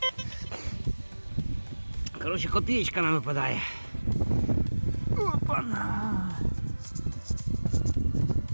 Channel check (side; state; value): both; inverted; correlation -1.00